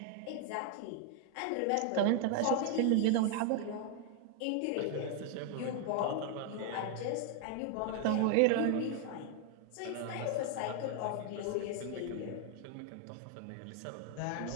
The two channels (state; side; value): different; both; correlation 0.01